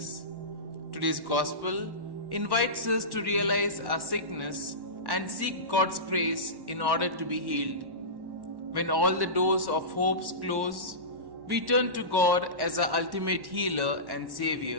Today's Gospel invites us to realize our sickness and seek God's grace in order to be healed. When all the doors of hope close, we turn to God as our ultimate healer and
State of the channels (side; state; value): left; late; 1.1 ms